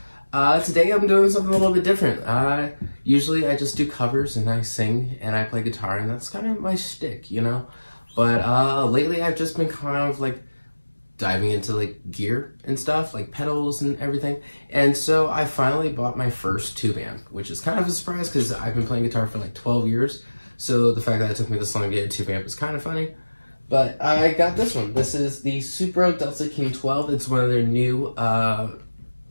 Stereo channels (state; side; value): inverted; both; correlation -1.00